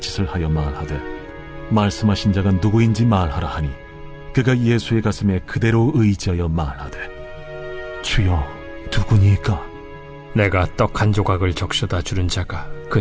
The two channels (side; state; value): both; identical; correlation 1.00